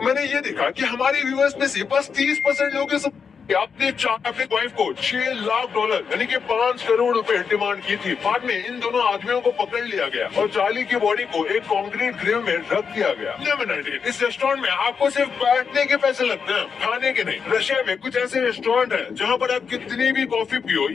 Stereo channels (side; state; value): right; quieter; 6.1 dB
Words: मैंने ये देखा कि हमारे व्यूअर्स में से बस 30% लोग अपने वाइफ को $6 लाख यानी कि 5 करोड़ रुपए डिमांड की थी। बाद में इन दोनों आदमियों को पकड़ लिया गया और चार्ली की बॉडी को एक कंक्रीट ग्रेव में रख दिया गया। नंबर 19, इस रेस्टोरेंट में आपको सिर्फ बैठने के पैसे लगते हैं, खाने के नहीं। रशिया में कुछ ऐसे रेस्टोरेंट है जहाँ पर आप कितनी भी कॉफी पियो